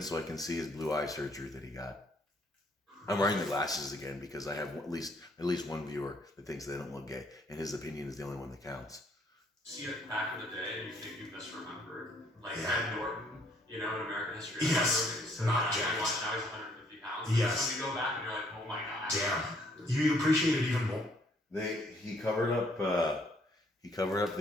so I can see his blue eye surgery that he got. I'm wearing the glasses again because I have at least one viewer that thinks they don't look gay, and his opinion is the only one that counts. See it back in the day and you think you misremembered. Like Yeah. Ed Norton, you know, in American History. Yes, So not now jacked. now he's 150 pounds. Yes. So you go back and you're like, oh my god. Damn. You appreciate it even more. He covered up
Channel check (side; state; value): both; normal; correlation 0.66